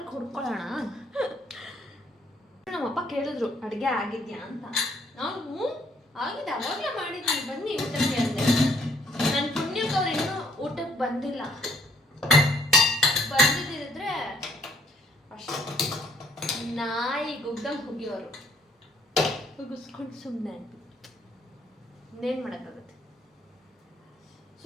ಹುಡ್ಕೊಳ್ಳೋಣ. ನಮ್ಮಪ್ಪ ಕೇಳಿದ್ರು ಅಡುಗೆ ಆಗಿದೆಯಾ ಅಂತ. ನಾವು ಆಗಿದೆ, ಅವಾಗಲೇ ಮಾಡಿದ್ದೀನಿ, ಬನ್ನಿ ಊಟಕ್ಕೆ ಅಂದೆ. ನನ್ನ ಪುಣ್ಯಕ್ಕೆ ಅವ್ರು ಇನ್ನೂ ಊಟಕ್ಕೆ ಬಂದಿಲ್ಲ. ಬಂದಿದ್ದಿದ್ರೆ ಅಷ್ಟೇ ನಾಯಿ ಗುಗ್ಗಂಗೆ ಹೋಗಿಯವರು ಉಗಿಸ್ಕೊಂಡು ಸುಮ್ಮನೆ ಅಂದ್ಬಿಟ್ಟು ಇನ್ನೇನು ಮಾಡೋಕ್ಕಾಗುತ್ತೆ.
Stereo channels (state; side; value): normal; both; correlation 0.65